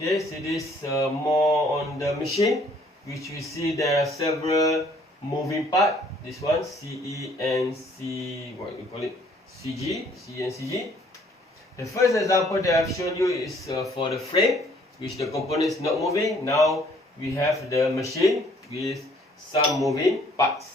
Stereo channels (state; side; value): normal; both; correlation 0.61